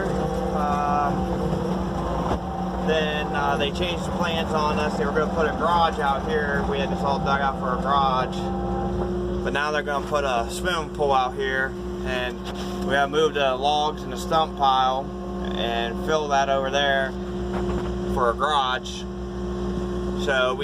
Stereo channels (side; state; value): both; identical; correlation 1.00